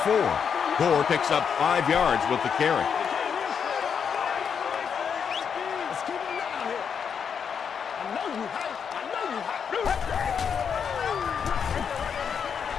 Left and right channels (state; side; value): quieter; right; 7.0 dB